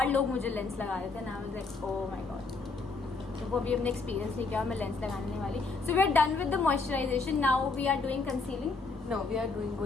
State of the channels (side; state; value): right; quieter; 4.0 dB